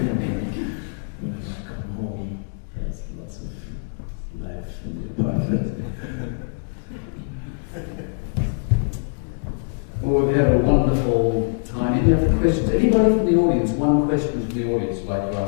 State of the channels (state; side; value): silent; right; digital silence